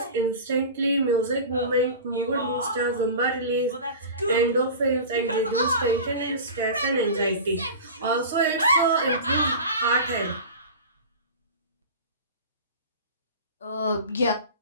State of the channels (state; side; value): inverted; both; correlation -0.34